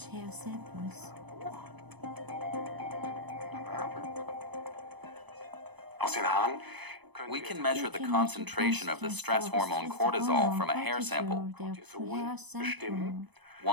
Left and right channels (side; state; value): left; late; 1.0 ms